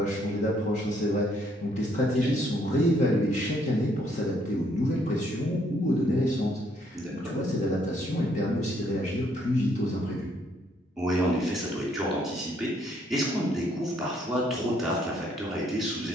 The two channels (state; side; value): normal; both; correlation 0.69